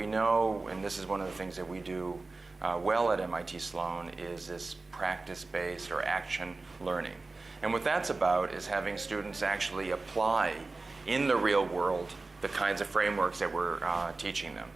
know, and this is one of the things that we do well at MIT Sloan, is this practice-based or action learning. And what that's about is having students actually apply in the real world the kinds of frameworks that we're teaching them.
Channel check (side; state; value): left; quieter; 3.5 dB